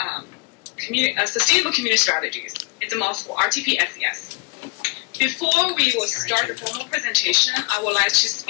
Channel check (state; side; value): quieter; right; 27.3 dB